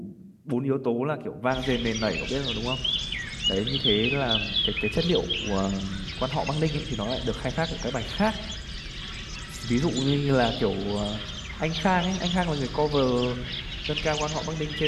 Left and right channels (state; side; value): identical; both; correlation 1.00